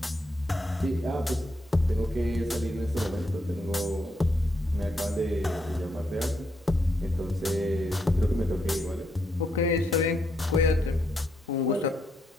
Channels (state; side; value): normal; both; correlation 0.79